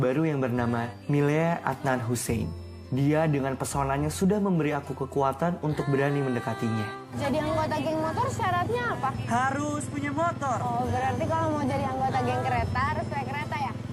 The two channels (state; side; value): identical; both; correlation 1.00